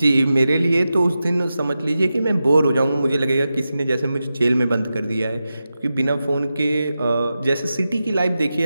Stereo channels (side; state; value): both; inverted; correlation -0.92